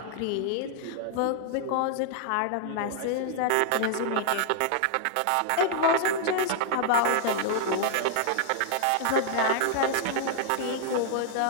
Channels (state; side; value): different; both; correlation -0.01